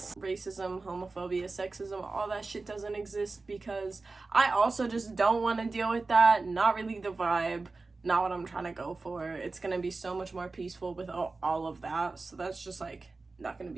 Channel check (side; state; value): left; quieter; 3.7 dB